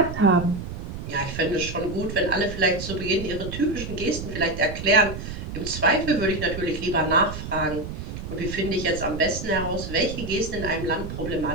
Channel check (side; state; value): right; noise; rumble, 8 dB below the sound